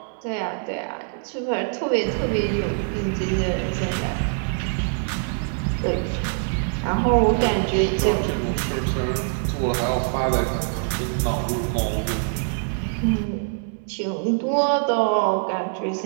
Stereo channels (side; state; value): left; silent; 63 dB below the other